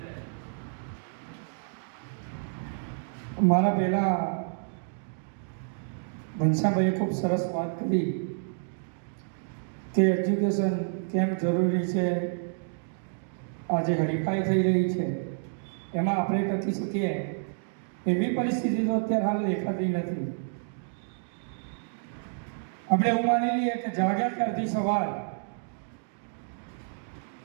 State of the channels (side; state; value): left; silent; digital silence